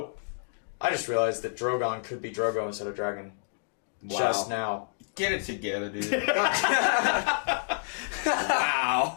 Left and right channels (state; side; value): silent; right; digital silence